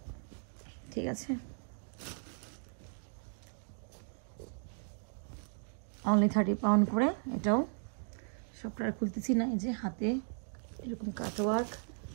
ঠিক আছে, অনলি 30 পাউন্ড করে। এটাও সবটা খুলতেছি না, এই যে হাতে এরকম কাটওয়ার্ক,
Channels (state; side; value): silent; left; 54 dB below the other